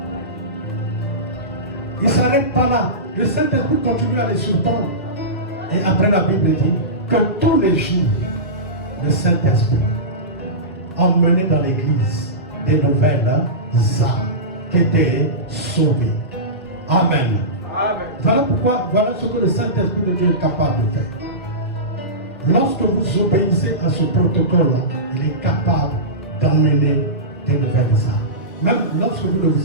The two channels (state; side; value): normal; both; correlation -0.18